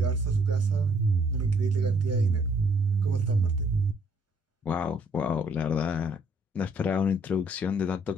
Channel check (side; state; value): both; normal; correlation 0.65